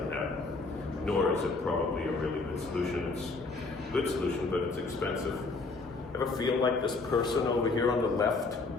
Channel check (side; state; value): right; quieter; 3.7 dB